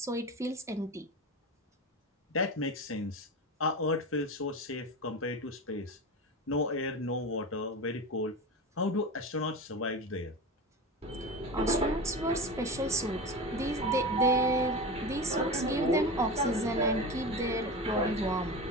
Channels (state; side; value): normal; both; correlation 0.26